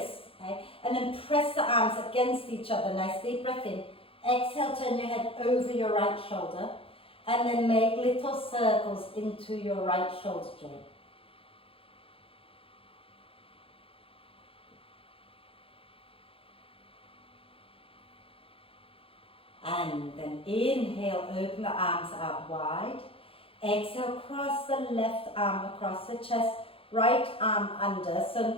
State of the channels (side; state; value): right; late; 0.27 ms